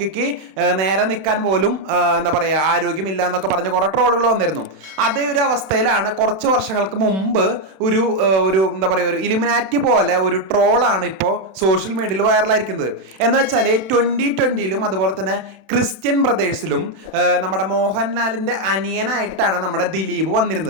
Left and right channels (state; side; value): late; left; 32 ms